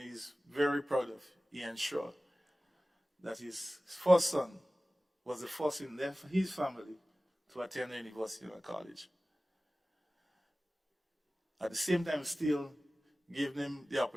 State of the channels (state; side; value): normal; both; correlation 0.97